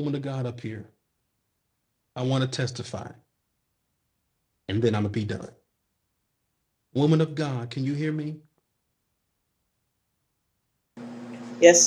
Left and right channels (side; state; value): both; identical; correlation 1.00